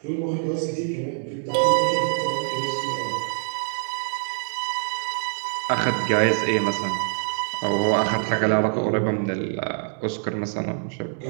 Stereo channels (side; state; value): left; silent; 62 dB below the other